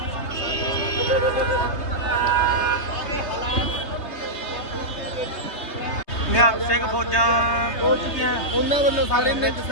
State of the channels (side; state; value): right; late; 3.3 ms